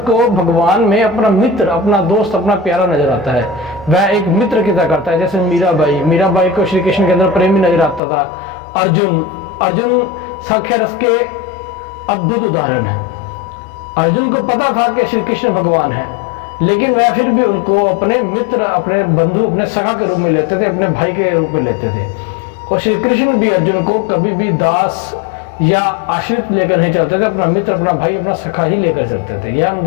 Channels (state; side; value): drops out; right; at 8.0 s